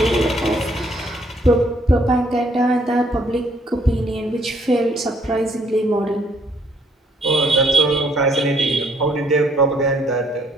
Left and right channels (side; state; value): both; normal; correlation 0.66